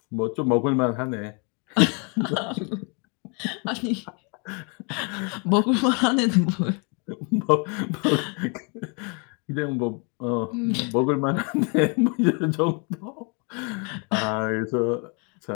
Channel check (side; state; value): right; quieter; 34.9 dB